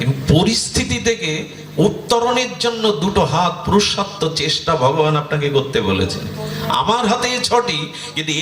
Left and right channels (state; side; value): identical; both; correlation 1.00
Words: পরিস্থিতি থেকে উত্তরণের জন্য 2টো হাত, পুরুষার্থ, চেষ্টা ভগবান আপনাকে করতে বলেছেন। আমার হাতে 6টি, কিন্তু